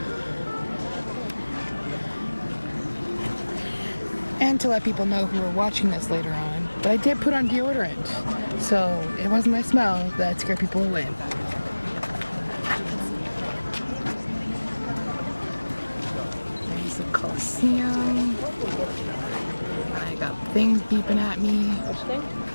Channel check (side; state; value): both; inverted; correlation -1.00